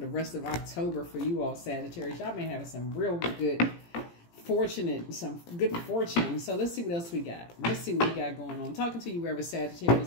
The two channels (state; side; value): late; right; 17 ms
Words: the rest of October for you all, Sagittarius. Y'all been having some real good some good fortune. So let's see what else we got. Let's see what we got going on. I'm talking to you wherever